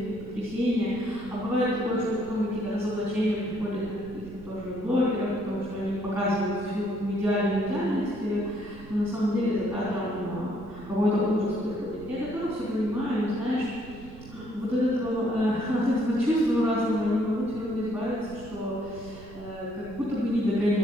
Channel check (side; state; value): right; noise; rumble, 17 dB below the sound